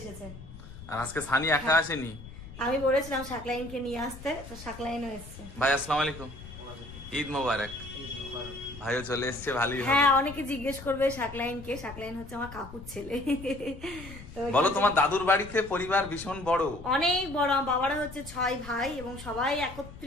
আর আজকে সানি একা আসেনি, আমি বলেছিলাম শাকলাইনকে নিয়ে আসতে, তো শাকলাইনও এসছে। ভাই আসসালামু আলাইকুম, ঈদ মোবারক। ভাইও চলে এসছে, ভালোই হবে। হ্যাঁ, অনেকে জিজ্ঞেস করবে শাকলাইনকে। শাকলাইন হচ্ছে আমার কাকুর ছেলে। বলো, তোমার দাদুর বাড়িতে পরিবার ভীষণ বড়, অনেক বড়। বাবারা হচ্ছে 6 ভাই এবং সবাই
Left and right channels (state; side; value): noise; left; rumble, 15 dB below the sound